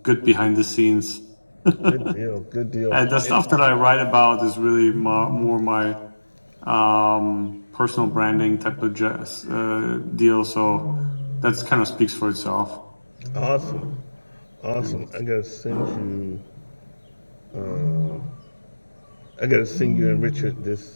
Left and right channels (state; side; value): inverted; both; correlation -1.00